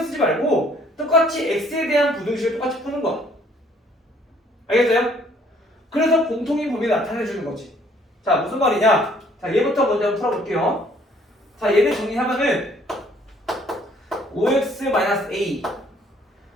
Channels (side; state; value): both; normal; correlation 0.61